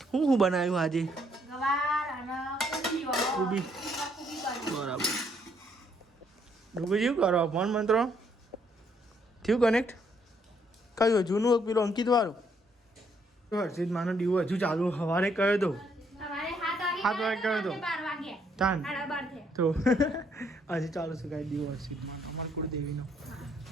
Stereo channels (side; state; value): both; normal; correlation 0.70